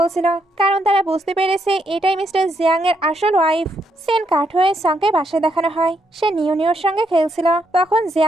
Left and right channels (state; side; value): normal; both; correlation 0.77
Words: কারণ তারা বুঝতে পেরেছে এটাই মিস্টার জিয়াং এর আসল ওয়াইফ। সেন কাট হয়ে সাংকে বাসায় দেখানো হয়। সে নিওর সঙ্গে খেলছিল, তখন